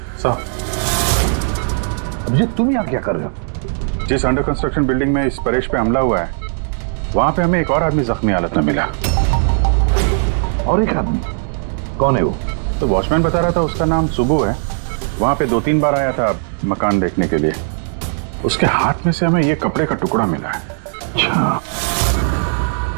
साहब, अभिजीत तुम यहाँ क्या कर रहे हो? जिस अंडर कंस्ट्रक्शन बिल्डिंग में इस परेश पे हमला हुआ है वहां पे हमें एक और आदमी जख्मी हालत में मिला। और एक आदमी? कौन है वो? तो वॉचमैन बता रहा था उसका नाम सुबू है, वहां पे 2-3 बार आया था मकान देखने के लिए। उसके हाथ में से हमें ये कपड़े का टुकड़ा मिला है। अच्छा,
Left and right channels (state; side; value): silent; left; digital silence